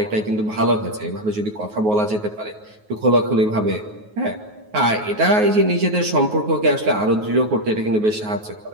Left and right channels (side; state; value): left; late; 9.4 ms